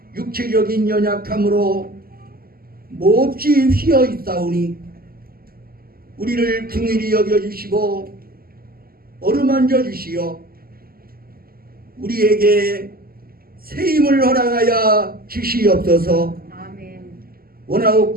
육체적인 연약함으로 몹시 휘어 있사오니 우리를 긍휼히 여겨주시고 어루만져 주시어 우리에게 새 힘을 허락하여 주시옵소서. 아멘.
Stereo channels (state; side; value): late; left; 0.43 ms